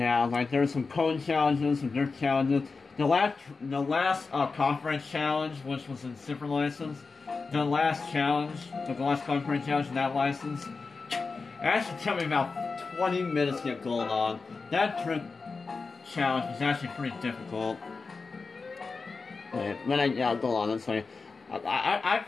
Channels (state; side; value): quieter; right; 4.3 dB